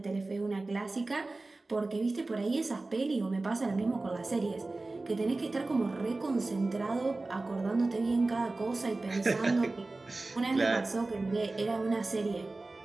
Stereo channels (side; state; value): left; quieter; 3.2 dB